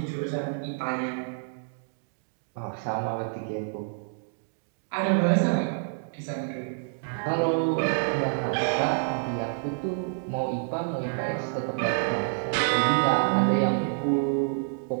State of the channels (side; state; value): left; silent; digital silence